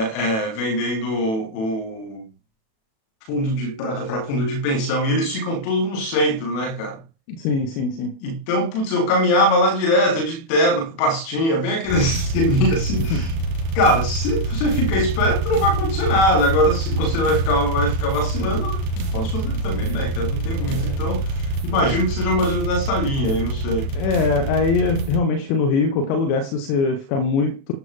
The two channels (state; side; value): late; right; 36 ms